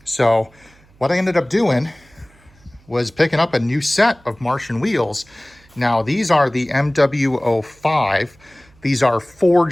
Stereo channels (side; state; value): right; noise; hum, 29 dB below the sound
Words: So what I ended up doing was picking up a new set of Martian wheels. Now these are the MW05. These are